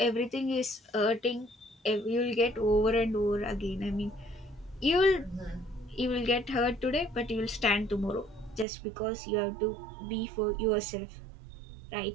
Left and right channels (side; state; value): left; drops out; at 8.7 s